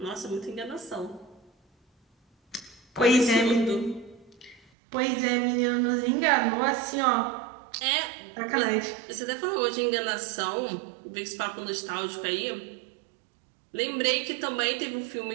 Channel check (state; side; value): drops out; left; at 4.6 s